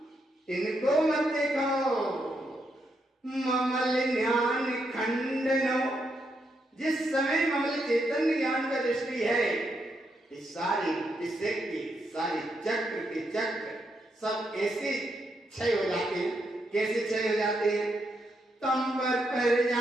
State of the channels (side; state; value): both; normal; correlation 0.80